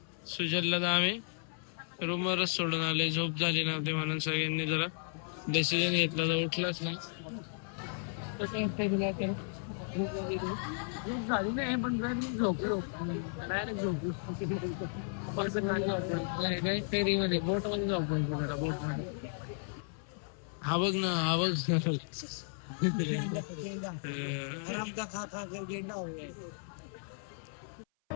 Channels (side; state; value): right; silent; 55 dB below the other